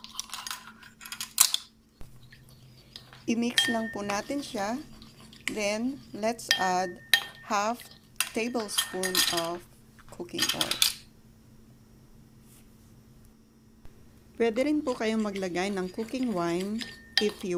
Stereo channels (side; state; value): both; identical; correlation 1.00